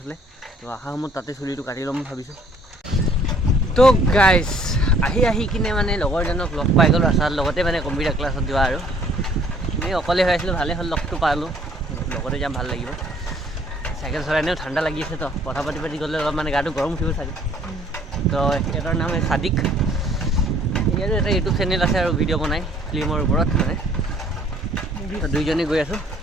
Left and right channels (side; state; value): both; normal; correlation 0.59